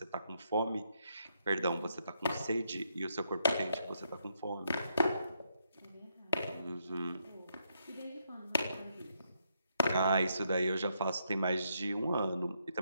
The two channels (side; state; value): both; inverted; correlation -0.77